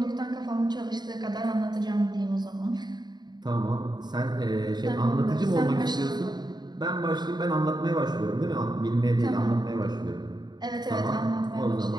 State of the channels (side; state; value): left; late; 0.20 ms